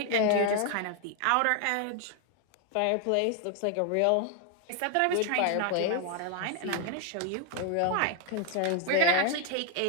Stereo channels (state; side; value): different; both; correlation 0.00